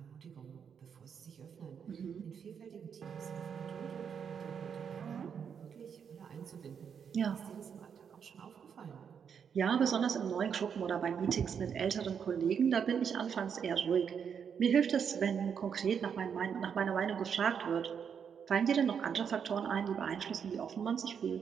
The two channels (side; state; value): left; quieter; 7.3 dB